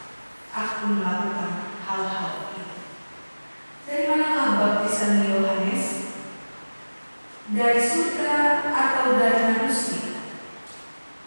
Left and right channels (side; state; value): both; inverted; correlation -1.00